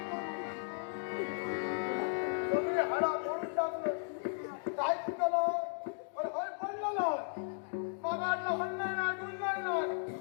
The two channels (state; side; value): silent; right; digital silence